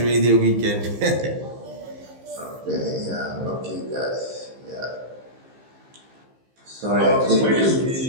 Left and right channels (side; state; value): left; late; 15 ms